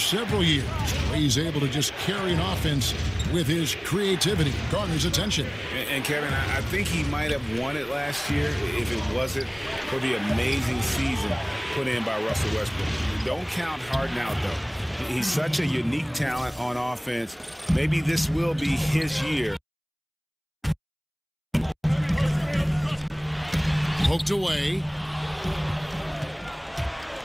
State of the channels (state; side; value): identical; both; correlation 1.00